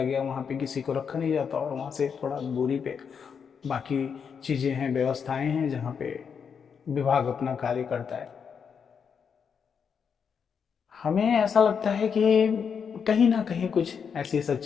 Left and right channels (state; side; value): quieter; right; 6.7 dB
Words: गया, वहाँ पे किसी को रखा नहीं जाता और वहाँ से थोड़ा दूरी पे बाकी चीज़ें हैं, व्यवस्थाएं हैं जहाँ पे विभाग अपना कार्य करता है। हमें ऐसा लगता है कि कहीं ना कहीं कुछ ऐसी